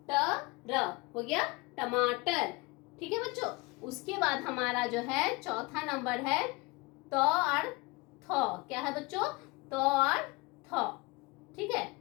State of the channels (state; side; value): quieter; right; 24.7 dB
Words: ट र, हो गया टमाटर। ठीक है बच्चों। उसके बाद हमारा जो है चौथा नंबर है त और थ। क्या है बच्चों, त और थ, ठीक है।